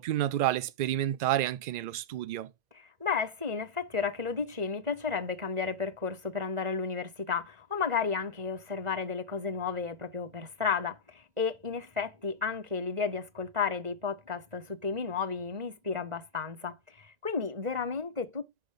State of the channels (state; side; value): late; left; 1.9 ms